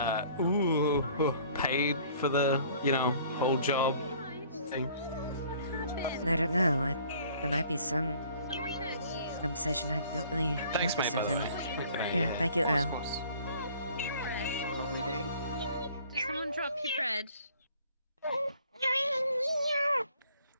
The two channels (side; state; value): both; inverted; correlation -0.55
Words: paid for the whole job thing? I don't know. There might be some compensation. I don't really Thanks, know mate, for by the certain. way. Yeah, thank you, Earl. Did someone drop your bread?